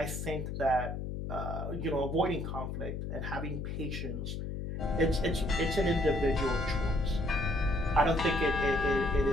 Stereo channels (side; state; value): left; noise; hum, 5 dB below the sound